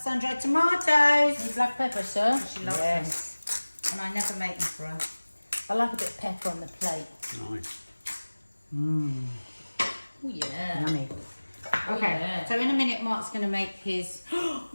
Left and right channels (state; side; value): inverted; both; correlation -1.00